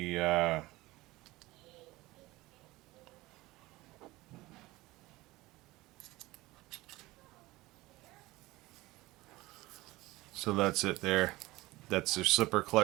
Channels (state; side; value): quieter; left; 19.5 dB